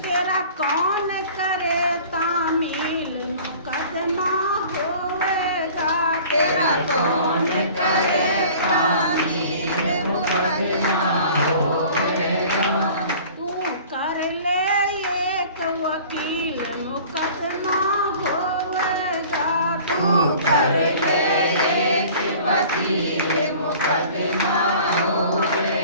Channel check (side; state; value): both; inverted; correlation -0.46